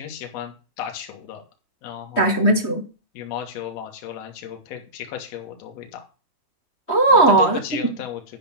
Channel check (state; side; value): late; right; 3.1 ms